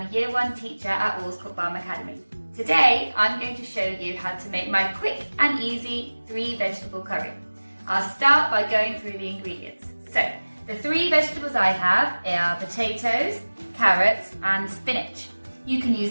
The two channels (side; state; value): both; inverted; correlation -1.00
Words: a Year 1 teacher at Allscourt Farm Academy. Today I'm going to show you how to make my quick and easy 3 vegetable curry. I'll start by going through the ingredients. So, the 3 vegetables I have are potatoes, carrots and spinach. You can